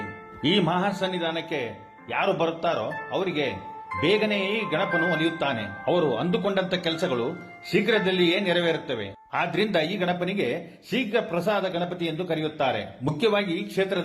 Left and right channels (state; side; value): identical; both; correlation 1.00